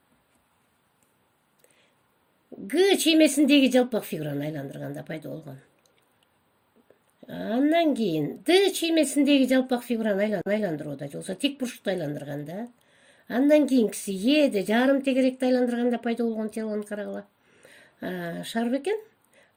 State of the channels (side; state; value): both; identical; correlation 1.00